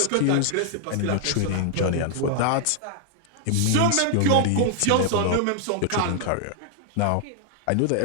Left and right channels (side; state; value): both; different; correlation 0.00